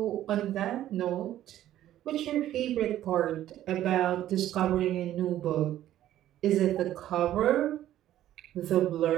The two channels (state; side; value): quieter; left; 12.8 dB